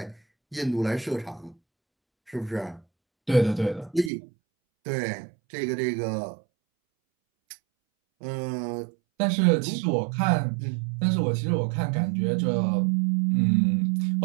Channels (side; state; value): left; drops out; at 4.1 s